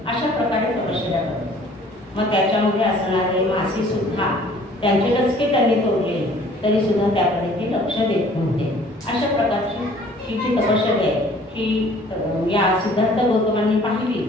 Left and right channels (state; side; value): normal; both; correlation 0.54